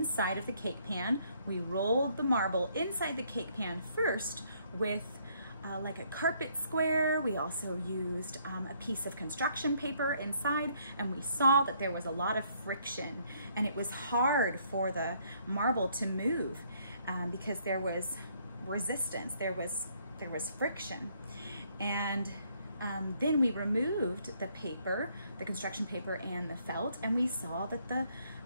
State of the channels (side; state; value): both; inverted; correlation -0.68